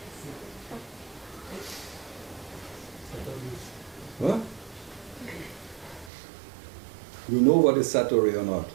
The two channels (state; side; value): drops out; left; at 6.1 s